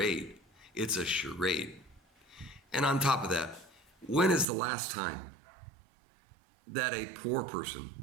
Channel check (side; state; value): left; drops out; at 4.5 s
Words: It's a charade. And on top of that, when is the last time that a poor person